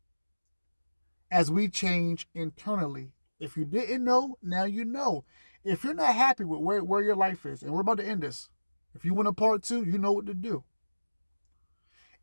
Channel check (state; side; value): inverted; both; correlation -1.00